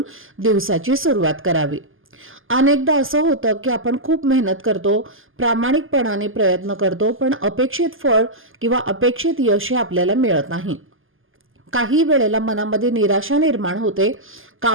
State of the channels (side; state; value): left; late; 0.59 ms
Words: दिवसाची सुरुवात करावी. अनेकदा असं होतं की आपण खूप मेहनत करतो, प्रामाणिकपणाने प्रयत्न करतो, पण अपेक्षित फळ किंवा अपेक्षित यश आपल्याला मिळत नाही. काही वेळेला मनामध्ये निराशा निर्माण होते,